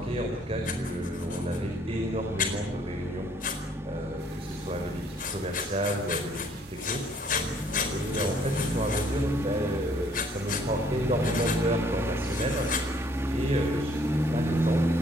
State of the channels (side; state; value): both; normal; correlation 0.63